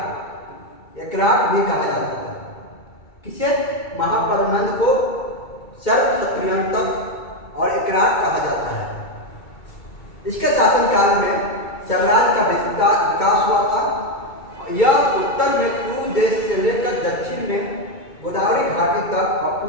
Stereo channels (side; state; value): right; late; 2.3 ms